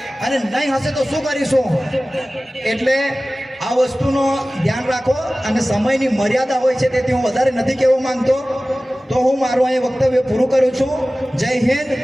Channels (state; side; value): normal; both; correlation 0.97